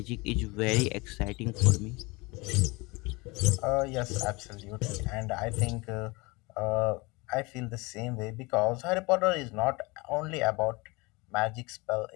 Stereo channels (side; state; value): right; quieter; 25.3 dB